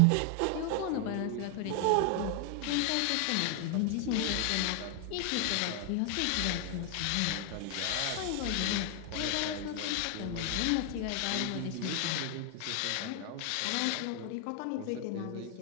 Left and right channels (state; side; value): different; both; correlation 0.00